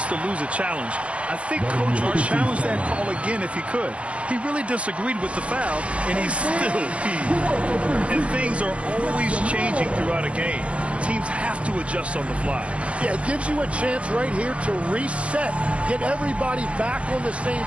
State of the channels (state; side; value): late; left; 0.061 ms